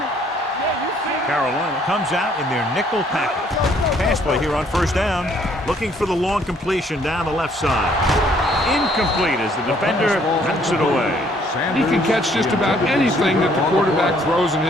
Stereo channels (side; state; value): both; normal; correlation 0.64